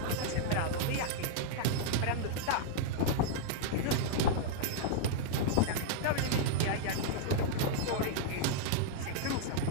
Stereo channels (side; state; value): both; different; correlation -0.01